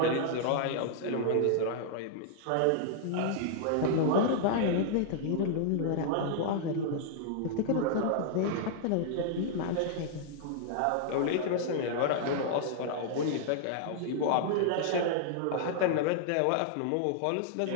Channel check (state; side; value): different; both; correlation -0.01